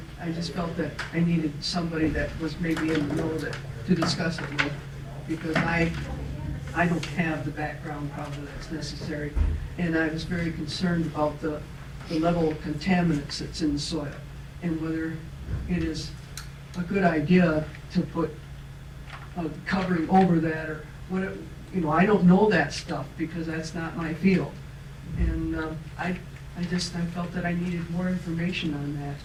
I just felt that I needed somebody that was maybe in the know to discuss it with, because I don't have the background probably that's necessary. And I was very concerned about the level of contaminants that's in the soil, and whether it is a good idea to put a covering over that, or what, I don't know that stuff because that's not my field. And I felt that I needed more information on that.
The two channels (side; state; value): both; identical; correlation 1.00